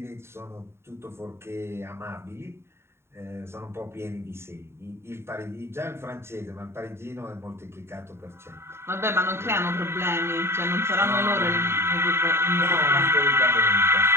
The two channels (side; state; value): left; late; 0.12 ms